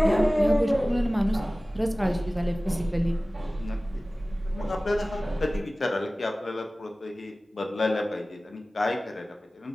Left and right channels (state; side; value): normal; both; correlation 0.97